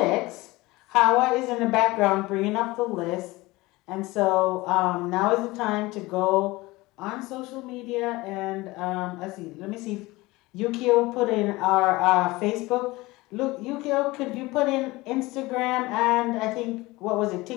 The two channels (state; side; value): quieter; right; 20.9 dB